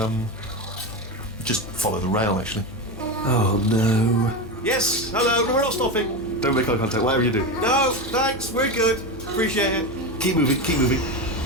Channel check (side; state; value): both; normal; correlation 0.18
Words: Just follow the rail, actually. Oh no. Yes, hello, we're not stopping. Don't make eye contact, whatever you do. No, thanks, we're good. Appreciate it. Keep moving, keep moving.